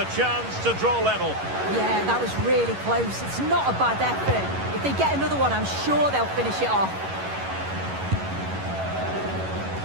chance to draw level. Yeah, that was really close. It's not a bad effort. If they get another one, I'm sure they'll finish it off.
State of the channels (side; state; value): left; late; 11 ms